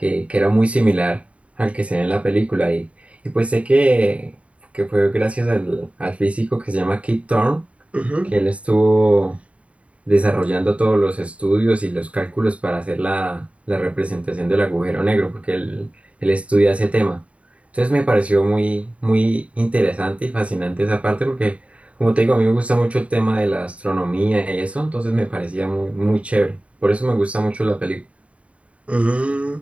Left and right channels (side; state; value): left; late; 0.065 ms